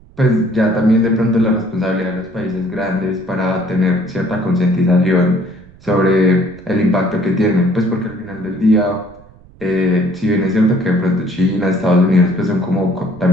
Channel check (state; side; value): noise; right; rumble, 24 dB below the sound